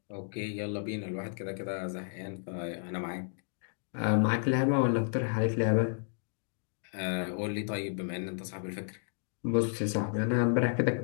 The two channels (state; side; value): silent; right; digital silence